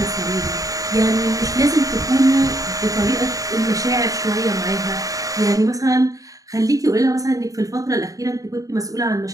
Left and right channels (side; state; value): left; late; 0.17 ms